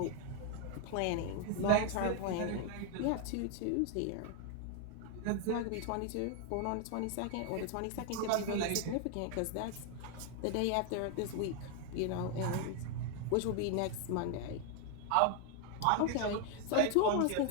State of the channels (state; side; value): different; both; correlation 0.01